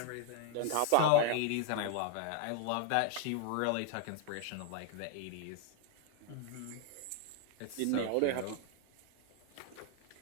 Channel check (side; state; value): both; different; correlation 0.00